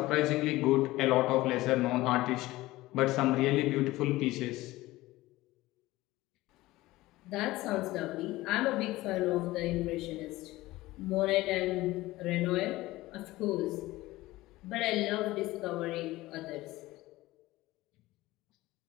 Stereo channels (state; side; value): quieter; right; 18.2 dB